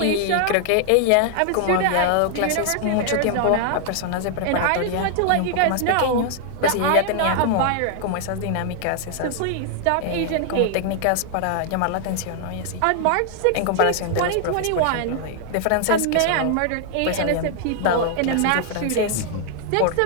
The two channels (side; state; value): both; different; correlation 0.00